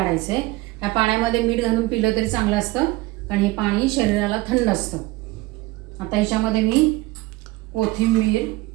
आहे। या पाण्यामध्ये मीठ घालून पिलं तरी चांगलं असतं, कारण हे पाणी शरीराला थंड असतं। आता ह्याच्यामध्ये मी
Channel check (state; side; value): quieter; left; 20.1 dB